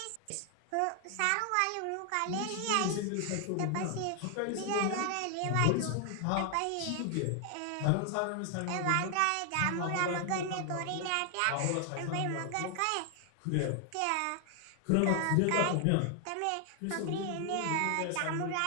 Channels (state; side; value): different; both; correlation 0.00